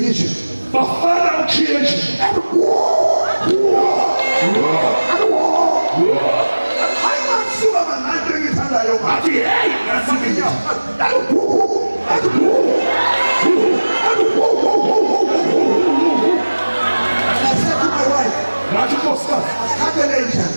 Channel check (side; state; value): both; inverted; correlation -1.00